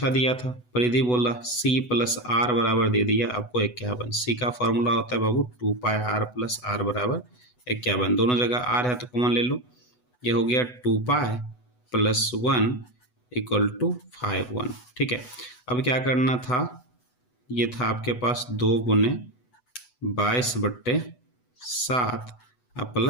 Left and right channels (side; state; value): right; late; 8.1 ms